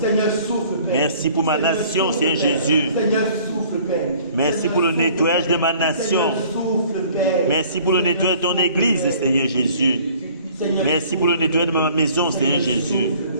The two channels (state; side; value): inverted; both; correlation -0.53